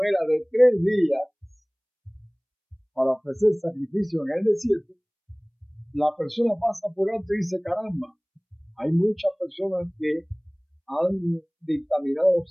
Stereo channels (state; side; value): identical; both; correlation 1.00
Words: era de 3 días para ofrecer sacrificio en el desierto, la persona pasa por alto y dice: caramba, hay muchas personas que han dictaminado